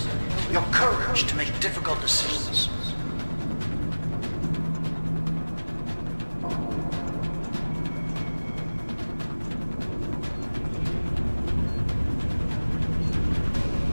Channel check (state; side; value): inverted; both; correlation -1.00